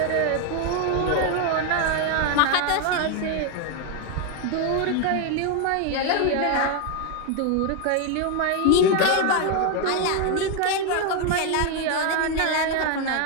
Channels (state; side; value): different; both; correlation 0.01